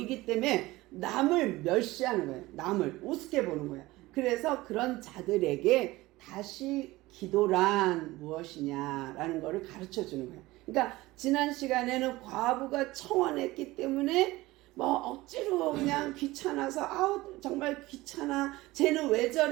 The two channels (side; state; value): left; quieter; 19.2 dB